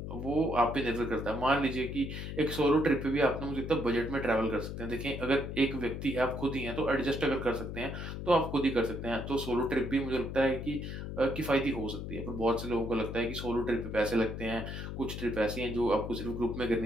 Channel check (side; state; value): left; noise; hum, 6 dB below the sound